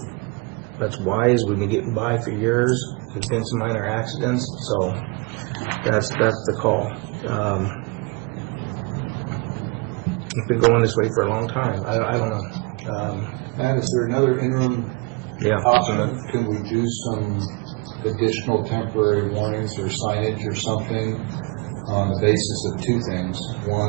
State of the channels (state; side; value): quieter; left; 29.1 dB